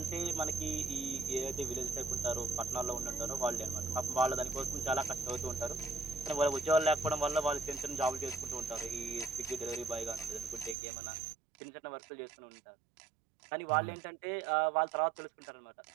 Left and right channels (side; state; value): left; drops out; at 10.8 s